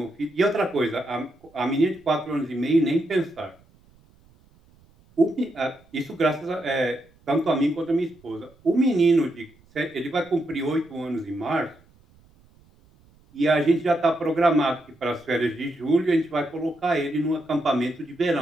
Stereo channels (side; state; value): right; noise; rumble, 30 dB below the sound